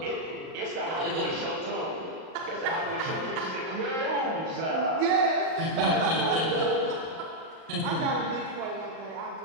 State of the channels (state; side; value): late; left; 38 ms